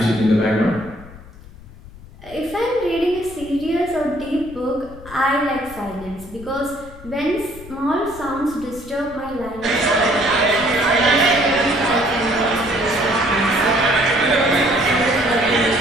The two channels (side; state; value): left; noise; rumble, 18 dB below the sound